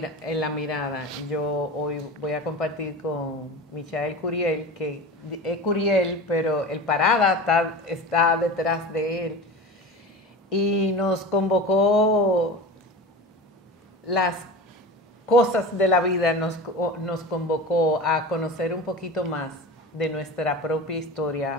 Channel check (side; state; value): both; normal; correlation 0.31